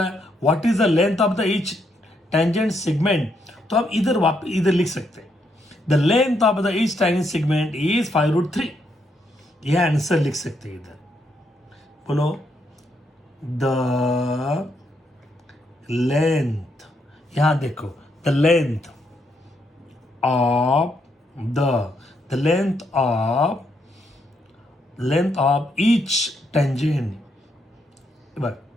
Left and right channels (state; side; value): normal; both; correlation 0.77